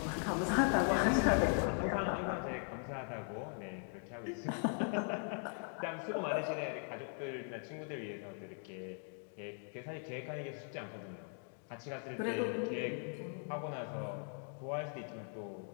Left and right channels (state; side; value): silent; right; 51 dB below the other